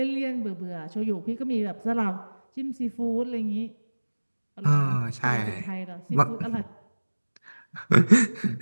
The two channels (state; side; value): inverted; both; correlation -1.00